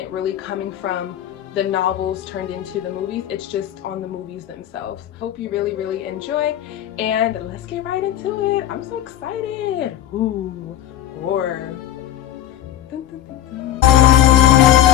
really coming from the novels turned into the movies, it's just on the movies themselves. Hope you really enjoy, and let's get right into it. I'm so excited. Ooh, horror. Dun, dun, dun, dun.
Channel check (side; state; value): right; quieter; 11.9 dB